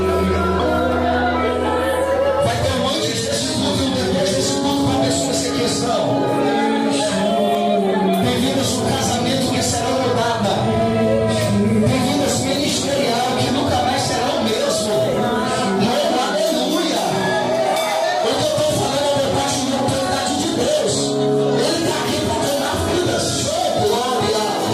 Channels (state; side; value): identical; both; correlation 1.00